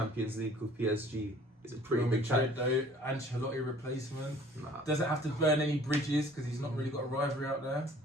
League with PSG is a pretty Real big Madrid, challenge. though, Ancelotti replacement. Nah. Doesn't have to burn any bridges because he's not really got a rivalry out there.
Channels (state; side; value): normal; both; correlation 0.52